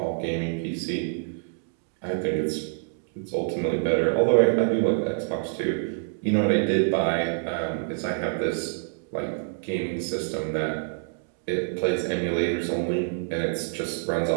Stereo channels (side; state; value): left; silent; 60 dB below the other